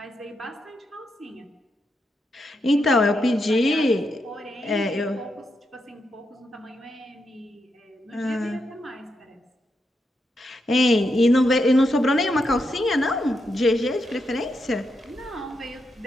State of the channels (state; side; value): normal; both; correlation 0.83